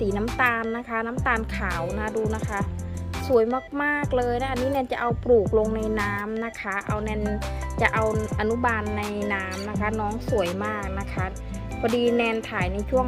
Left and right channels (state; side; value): identical; both; correlation 1.00